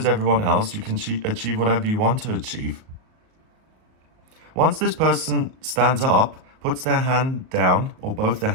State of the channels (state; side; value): late; left; 38 ms